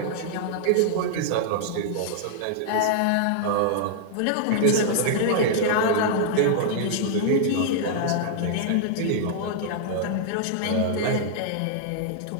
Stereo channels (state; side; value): different; both; correlation -0.01